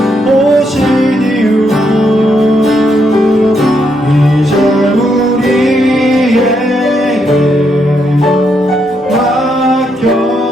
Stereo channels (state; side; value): normal; both; correlation 0.78